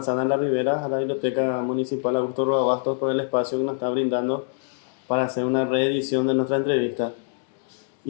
de la Ribera, a la Biblioteca Municipal Augusto Roa Bastos por el espacio que nos está brindando para hacer una reedición de nuestra entrevista.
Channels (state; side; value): silent; right; digital silence